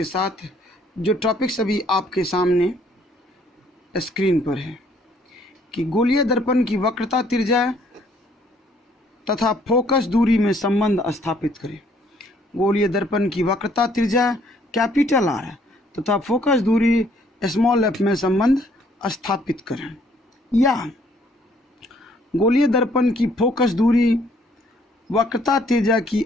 साथ। जो टॉपिक्स अभी आपके सामने स्क्रीन पर है कि गोलीय दर्पण की वक्रता, त्रिज्या तथा फोकस दूरी में संबंध स्थापित करें। गोलीय दर्पण की वक्रता, त्रिज्या कैपिटल आर तथा फोकस दूरी स्मॉल एफ में संबंध स्थापित करें। या गोलीय दर्पण की फोकस दूरी वक्रता त्रिज्या की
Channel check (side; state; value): both; normal; correlation 0.64